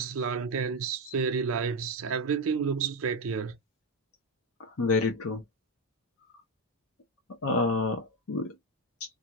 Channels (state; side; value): normal; both; correlation 0.09